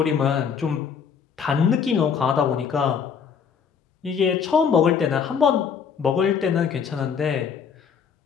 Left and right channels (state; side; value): quieter; right; 6.8 dB